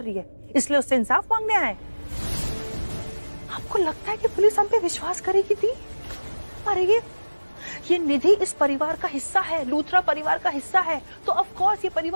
रही है, इसलिए उससे इंसाफ मांगने आए। आपको लगता है कि पुलिस हम पे विश्वास करेगी? थी अरे ये निधि इस परिवार का हिस्सा है, लूथरा परिवार का हिस्सा है, तो ऑफ कोर्स ये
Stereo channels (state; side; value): inverted; both; correlation -1.00